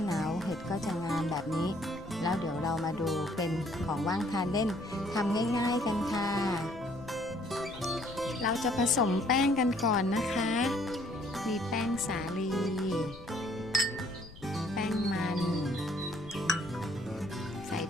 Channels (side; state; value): left; noise; rumble, 18 dB below the sound